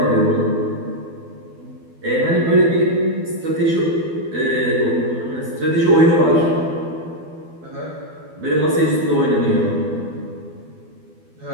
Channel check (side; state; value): left; late; 12 ms